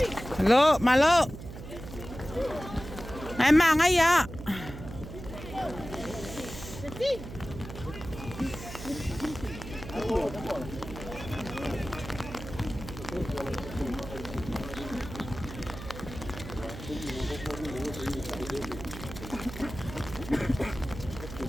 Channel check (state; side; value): noise; right; hum, 11 dB below the sound